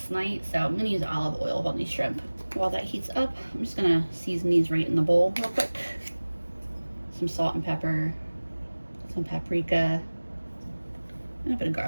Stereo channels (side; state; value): both; inverted; correlation -1.00